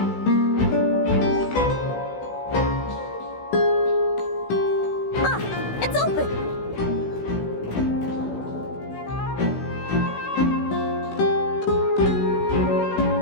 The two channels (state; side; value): late; right; 16 ms